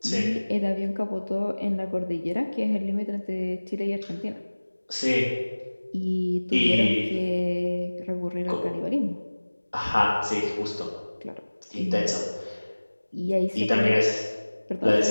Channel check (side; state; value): both; inverted; correlation -1.00